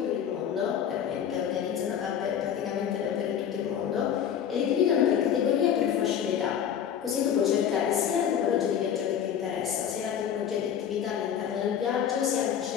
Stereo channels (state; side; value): quieter; right; 8.8 dB